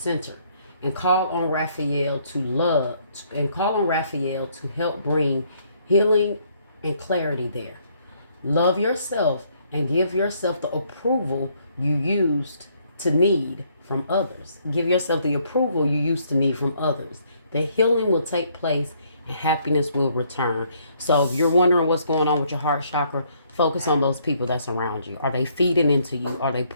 and call on Raphael to help bring healing and clarity there. Love yourself and give yourself the approval you used to need from others. Give yourself the approval you used to need from others. The healing will take place and happiness will return. So if you're wondering what's going on with your heart chakra, focus on those people that's around you. Are they feeding into you? Are they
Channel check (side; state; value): both; inverted; correlation -0.68